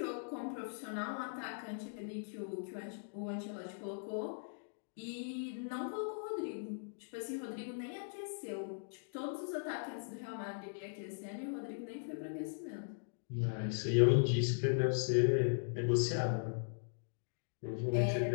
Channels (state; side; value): silent; right; digital silence